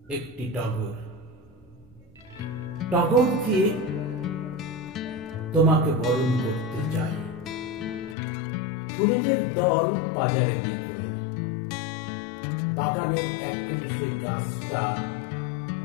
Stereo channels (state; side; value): drops out; right; at 8.2 s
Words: একটি টগর। টগরকে তোমাকে বরণ করতে চাই। ফুলেদের দল বাজারে বিকোয়, বাগানের এক কোণে সেই গাছটা